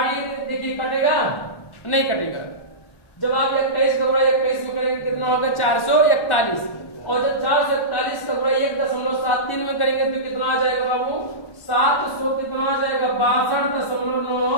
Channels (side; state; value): right; late; 1.1 ms